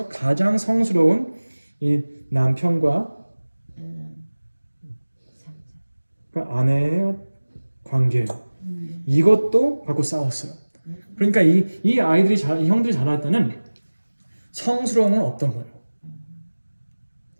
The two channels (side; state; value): both; inverted; correlation -1.00